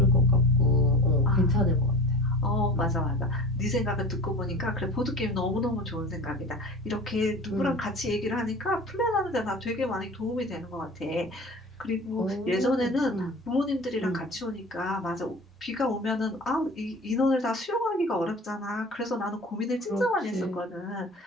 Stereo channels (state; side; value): normal; both; correlation 0.37